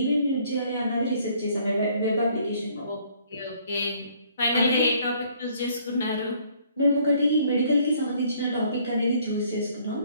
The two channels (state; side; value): inverted; both; correlation -0.62